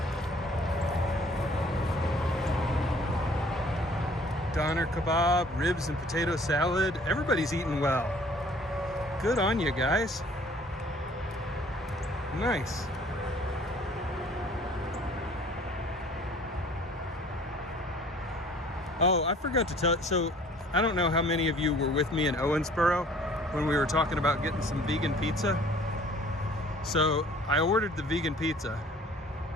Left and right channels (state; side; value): normal; both; correlation 0.54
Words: Doner kebab, ribs and potato salad. Everybody's eating well. Good on you guys. Nice. Oh, I forgot to tell. So I don't know how many of you were with me in Owensboro when we were talking about getting some vegan pizza. So I ordered the vegan pizza,